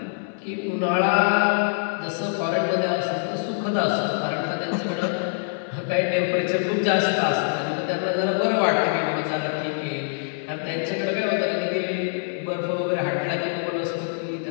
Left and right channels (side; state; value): right; silent; digital silence